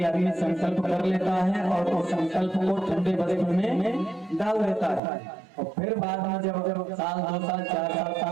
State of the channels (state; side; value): drops out; left; at 5.0 s